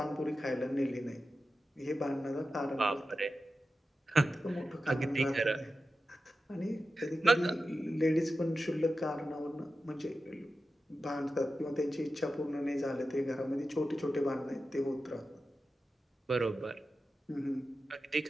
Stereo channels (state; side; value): normal; both; correlation 0.92